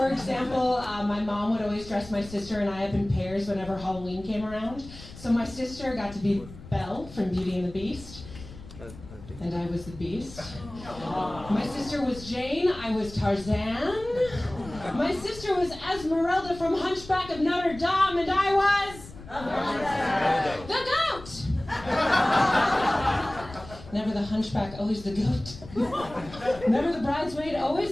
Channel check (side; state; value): left; noise; rumble, 16 dB below the sound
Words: example, my mom would always dress my sister and I up in pairs whenever Halloween came around. So my sister got to be Belle from Beauty and the Beast, and I was the Beast. My sister was Jane, I was Tarzan. My sister was Esmeralda from Hunchback of Notre Dame, and I was the goat. Never the hunchback, always the goat. Never the bridesmaid,